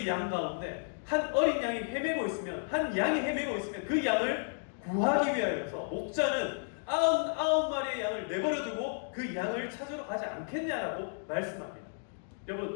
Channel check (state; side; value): silent; right; digital silence